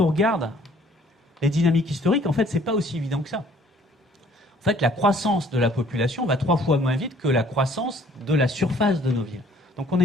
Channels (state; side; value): normal; both; correlation 0.58